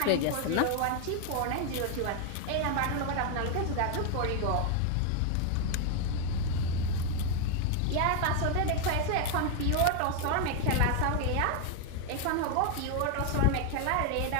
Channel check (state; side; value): different; both; correlation 0.01